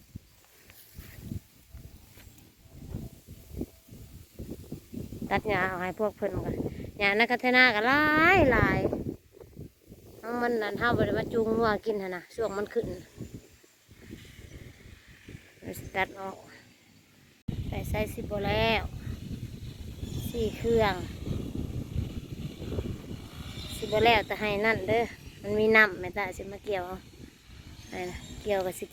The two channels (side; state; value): both; identical; correlation 1.00